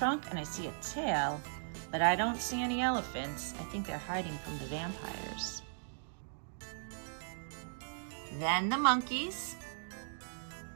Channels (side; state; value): left; silent; digital silence